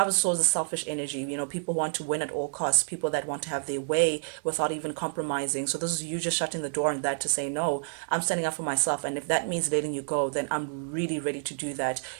of Swords is selfish energy. People want to win at all costs, people that want to have their way without even compromising. So this is you just shutting the door on that to say, no, I'm standing up for myself. And if that means letting you go, then I'm really ready to do that.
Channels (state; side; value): silent; left; 59 dB below the other